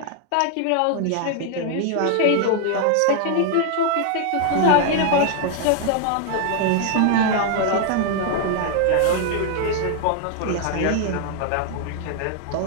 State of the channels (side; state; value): both; different; correlation 0.00